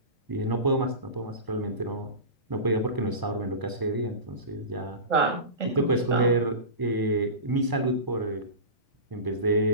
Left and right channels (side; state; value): left; late; 1.0 ms